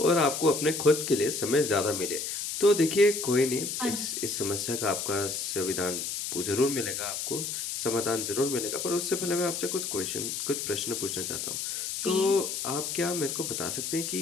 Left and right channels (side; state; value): left; noise; hiss, 4 dB below the sound